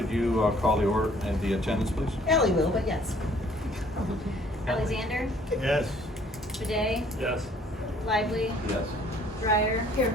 you call the order and the attendance, please? Ellie will, but yes. Alexander? Yes. Bidet? Yes. Lively? Yes. Dreyer? Here.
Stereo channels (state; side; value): normal; both; correlation 0.59